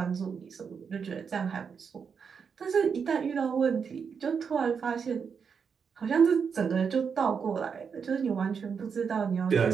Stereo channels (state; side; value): quieter; left; 6.3 dB